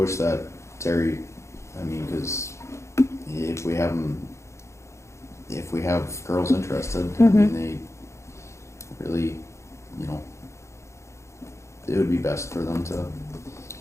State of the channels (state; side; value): late; right; 0.14 ms